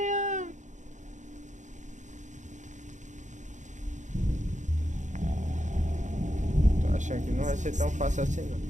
Tô achando que não vai ser tão fácil assim, não.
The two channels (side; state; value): left; late; 0.35 ms